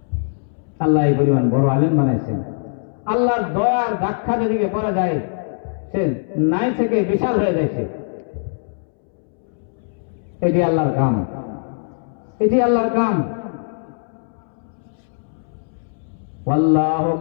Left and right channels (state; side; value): silent; right; 65 dB below the other